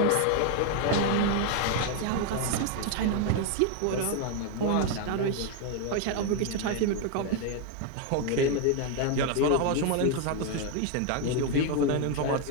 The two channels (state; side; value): different; both; correlation 0.01